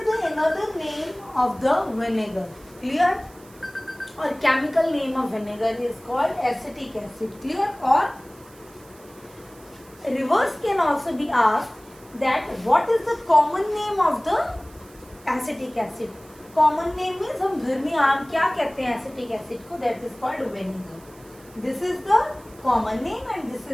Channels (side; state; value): right; noise; hiss, 25 dB below the sound